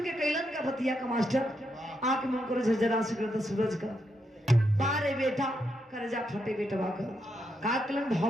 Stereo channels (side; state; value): both; normal; correlation 0.81